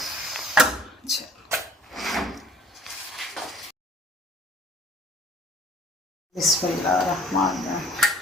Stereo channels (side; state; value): both; normal; correlation 0.53